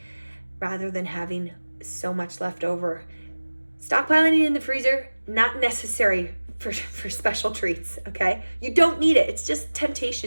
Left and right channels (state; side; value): inverted; both; correlation -1.00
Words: rather than having so much left over. Stockpiling it in the freezer, not necessary for special treats, okay? You don't need it. It's just